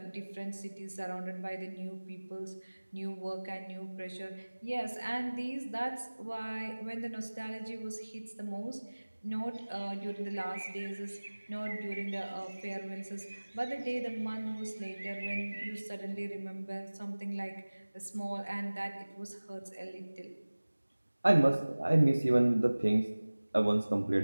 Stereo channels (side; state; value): both; inverted; correlation -1.00